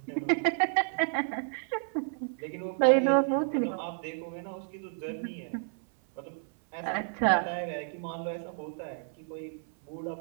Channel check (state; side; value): silent; left; 57 dB below the other